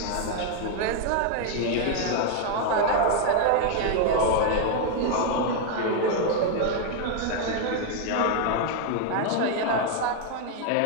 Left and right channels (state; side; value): different; both; correlation 0.00